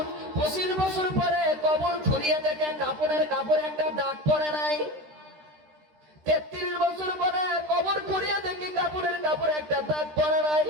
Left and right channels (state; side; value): late; left; 13 ms